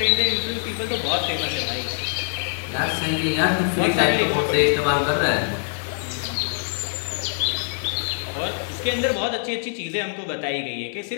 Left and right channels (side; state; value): right; silent; digital silence